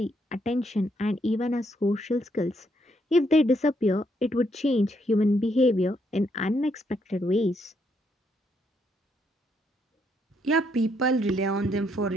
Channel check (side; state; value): both; normal; correlation 0.75